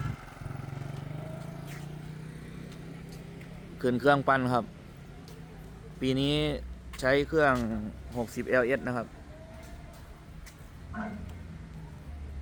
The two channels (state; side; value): identical; both; correlation 1.00